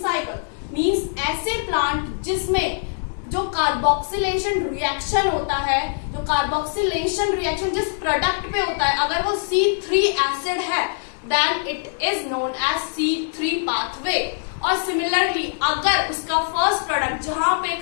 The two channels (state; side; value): silent; right; 64 dB below the other